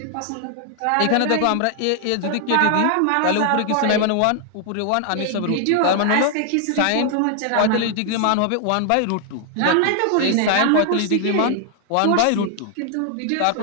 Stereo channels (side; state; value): both; different; correlation 0.00